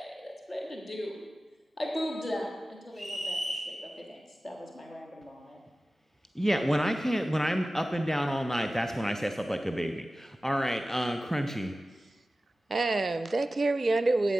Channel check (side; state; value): both; normal; correlation 0.96